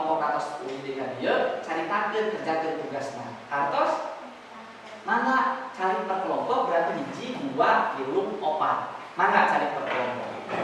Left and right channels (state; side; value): identical; both; correlation 1.00